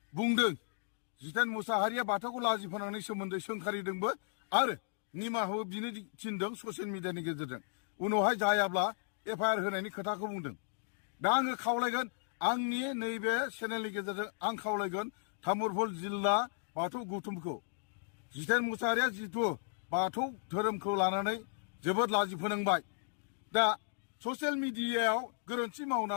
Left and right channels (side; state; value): right; silent; digital silence